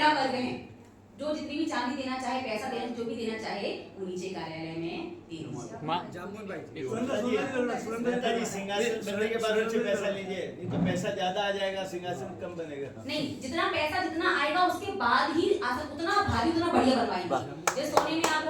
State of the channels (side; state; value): both; identical; correlation 1.00